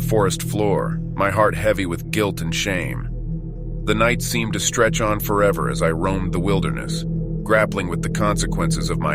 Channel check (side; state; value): both; identical; correlation 1.00